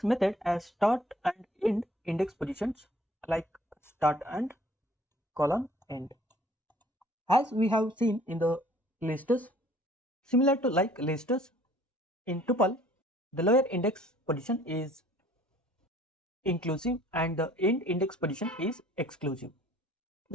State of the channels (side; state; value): both; normal; correlation 0.56